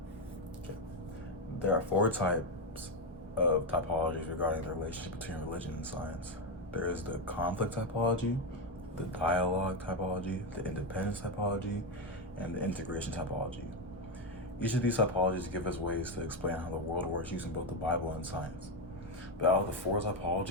Okay. There are four types of typologies regarding the relationship between religion and science. There is the conflict typology, the dialogue typology, the independence typology, and the integration typology. Each of these typologies give us ways to explain how the world works using both the Bible and science. But out of the four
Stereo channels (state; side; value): normal; both; correlation 0.08